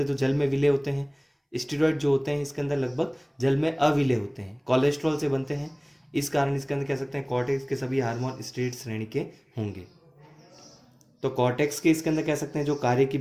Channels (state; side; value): identical; both; correlation 1.00